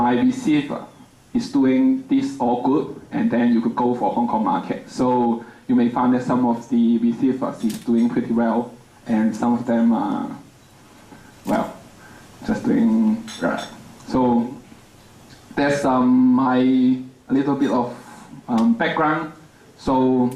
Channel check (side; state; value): both; identical; correlation 1.00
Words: receiver is doing this all good, and then you could go for Hong Kong market. So you may find that some of the receivers is doing pretty well, and some of them are, well, just doing right. So that's a little bit of background. So